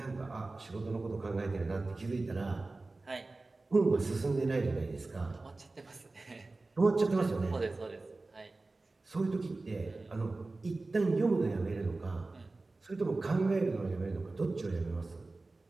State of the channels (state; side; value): quieter; left; 3.3 dB